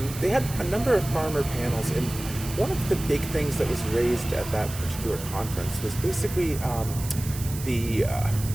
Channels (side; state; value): right; noise; hiss, 12 dB below the sound